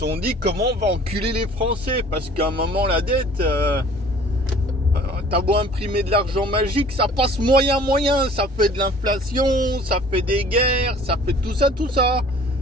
sont dit comment on va enculer les Français, parce qu'à un moment la dette, t'as beau imprimer de l'argent magique, ça passe moyen, ça fait de l'inflation, ça fait des guerres, ça fait tout ça.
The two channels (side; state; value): both; normal; correlation 0.50